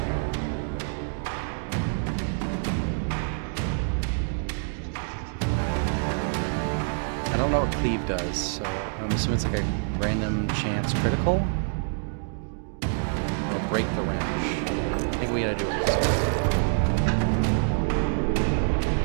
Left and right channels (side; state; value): left; silent; digital silence